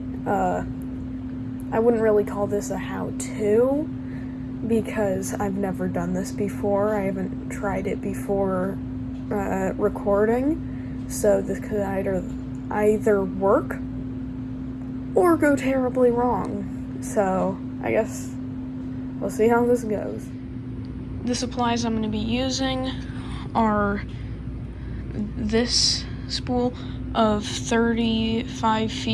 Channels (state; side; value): identical; both; correlation 1.00